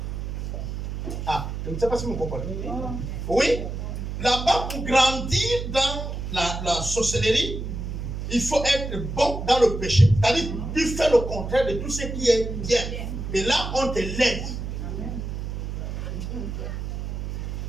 Ah, je ne sais pas si vous comprenez. Oui, là-bas, pour grandir dans la sorcellerie, il faut être bon dans le péché. C'est-à-dire, tu fais le contraire de tout ce qui est bien. Et là, on te l'aide.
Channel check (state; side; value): noise; right; hum, 5 dB below the sound